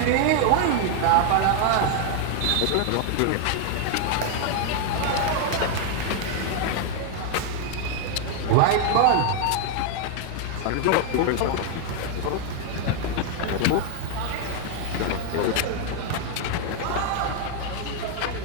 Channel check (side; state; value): both; different; correlation 0.00